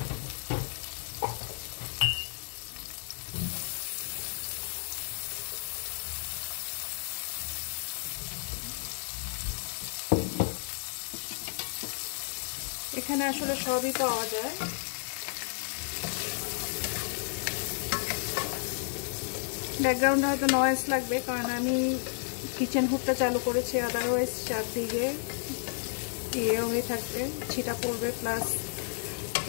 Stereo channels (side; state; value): right; silent; 56 dB below the other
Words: এখানে আসলে সবই পাওয়া যায়। ব্যাকগ্রাউন্ডে হয়তো নয়েজ লাগবে, কারণ আমি কিচেন হুডটা চালু করেছি, আদারওয়াইজ চারদিকে ইয়ে হয়ে থাকবে, ছিটা পড়বে, প্লাস